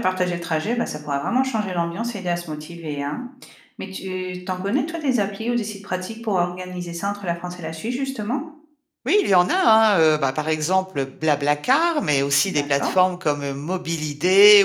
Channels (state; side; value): identical; both; correlation 1.00